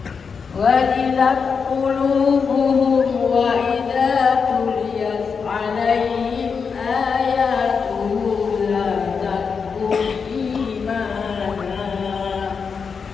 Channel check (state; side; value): quieter; right; 5.7 dB